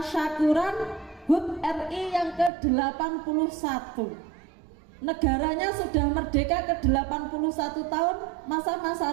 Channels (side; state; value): left; drops out; at 2.5 s